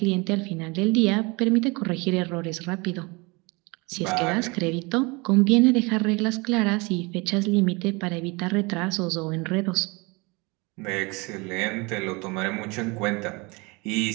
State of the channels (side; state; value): left; quieter; 26.8 dB